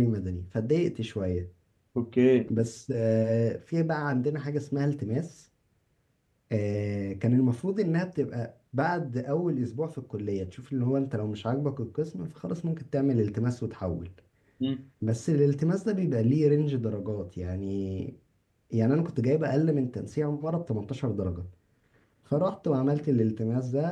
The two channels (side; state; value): both; identical; correlation 1.00